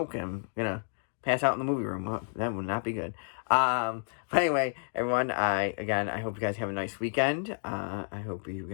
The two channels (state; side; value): silent; right; digital silence